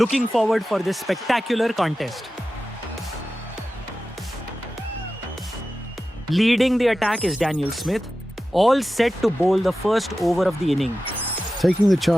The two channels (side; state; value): both; normal; correlation 0.94